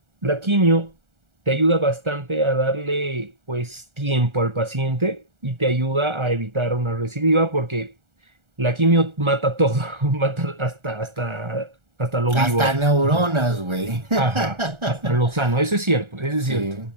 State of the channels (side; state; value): left; late; 1.4 ms